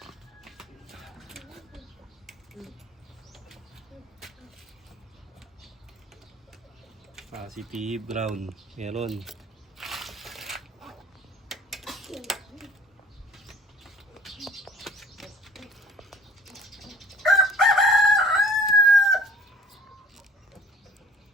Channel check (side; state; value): both; normal; correlation 0.50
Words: Positive brown. Meron.